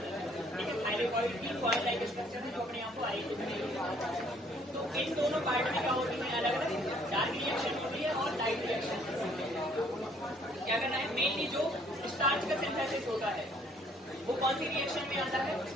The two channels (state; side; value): normal; both; correlation 0.62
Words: है, ठीक है? थाइलेकॉइड की कॉइल लाइक स्ट्रक्चर है जो अपने आप को आई। तो इन दोनों पार्ट में क्या होती है, अलग अलग डार्क रिएक्शन होती है और लाइट रिएक्शन। क्या करना है, मेनली जो स्टार्च का सिंथेसिस होता है वो कौन सी रिएक्शन में आता है,